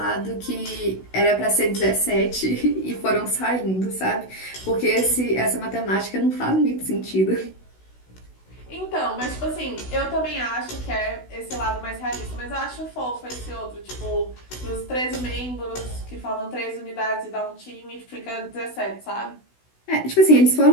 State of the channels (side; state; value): right; late; 16 ms